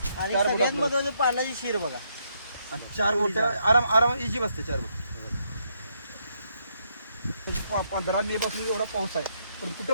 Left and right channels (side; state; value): both; inverted; correlation -0.76